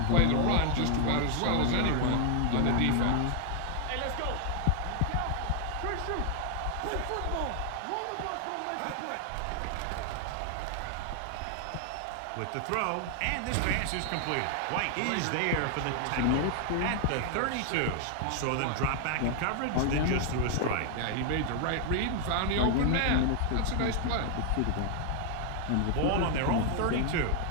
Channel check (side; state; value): both; different; correlation 0.00